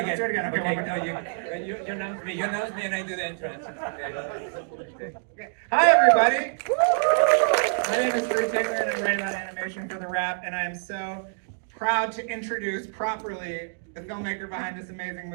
Okay, no, you announce me, and I do the entrance. Okay. Hi, everybody. My name is Bruce Hickman, and I'm writing on animation for The Wrap, and I am so proud to introduce properly the filmmaker behind this amazing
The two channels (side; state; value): left; silent; digital silence